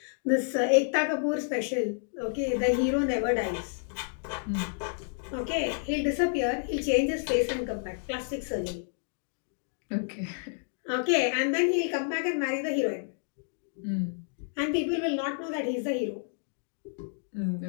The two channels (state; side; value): silent; right; digital silence